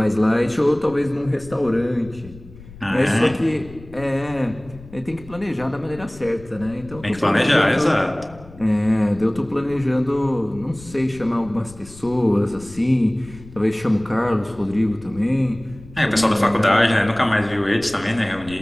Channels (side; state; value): left; noise; rumble, 19 dB below the sound